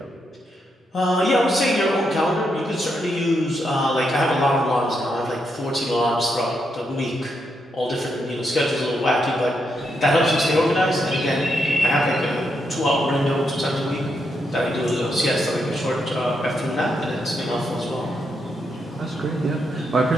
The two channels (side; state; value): both; normal; correlation 0.81